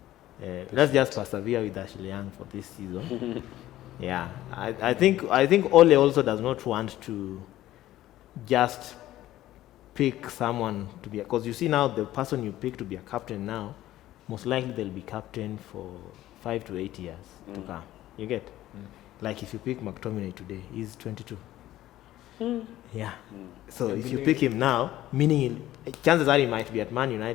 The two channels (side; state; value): right; quieter; 14.5 dB